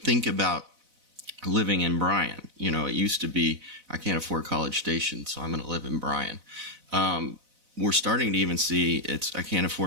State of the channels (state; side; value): late; left; 4.0 ms